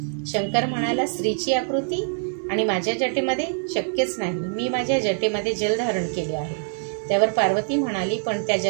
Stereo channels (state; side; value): silent; left; digital silence